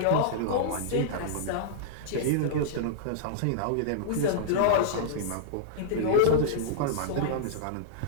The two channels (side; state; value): both; different; correlation -0.02